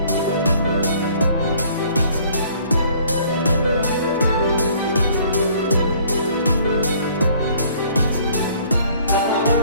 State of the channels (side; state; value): both; inverted; correlation -0.57